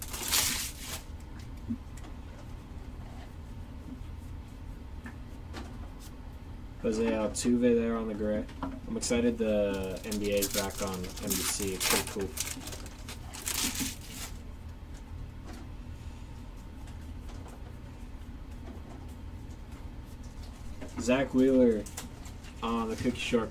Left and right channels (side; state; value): both; identical; correlation 1.00